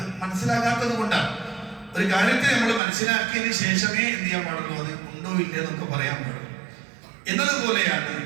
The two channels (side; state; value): left; drops out; at 2.8 s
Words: മനസ്സിലാകാത്തത് കൊണ്ടാണ്. ഒരു കാര്യത്തെ നമ്മൾ മനസ്സിലാക്കിയതിന് ശേഷമേ എന്ത് ചെയ്യാൻ പാടുള്ളൂ, അത് ഉണ്ടോ ഇല്ല എന്നൊക്കെ പറയാൻ പാടുള്ളൂ. എന്നതുപോലെയാണ്